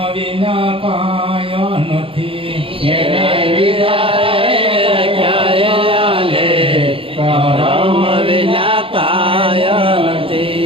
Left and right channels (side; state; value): left; late; 0.26 ms